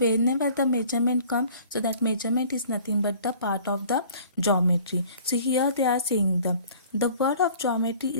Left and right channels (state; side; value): inverted; both; correlation -0.51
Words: the measurement comes, so that measurement is nothing but the part of the geometry. So here they are saying the word of geometry